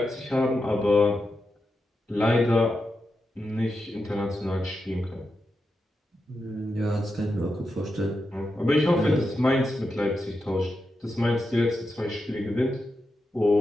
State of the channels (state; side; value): normal; both; correlation 0.88